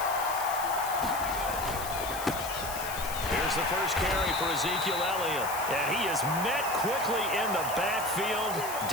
Here's the first carry for Ezekiel Elliott. And he is met quickly in the backfield.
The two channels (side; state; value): left; noise; hiss, 9 dB below the sound